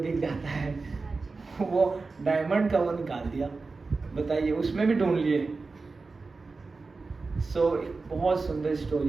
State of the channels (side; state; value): left; quieter; 4.0 dB